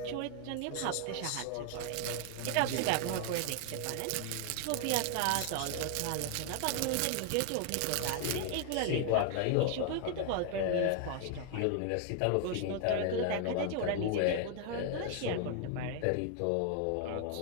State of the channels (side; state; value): both; different; correlation 0.00